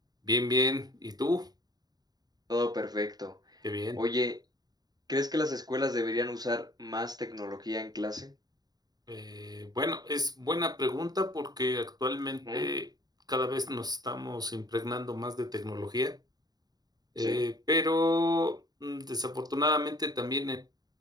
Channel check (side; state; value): left; late; 0.19 ms